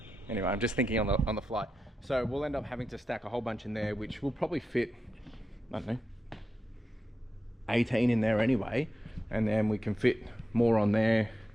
anyway, I'm just thinking on the fly. So we'll end up having to stack a whole bunch in there, which will probably fit, I don't know, 18 in there anyway, and then we can fit more on there.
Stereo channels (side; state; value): both; normal; correlation 0.89